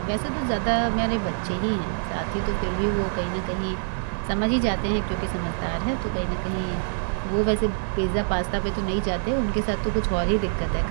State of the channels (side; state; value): left; silent; 62 dB below the other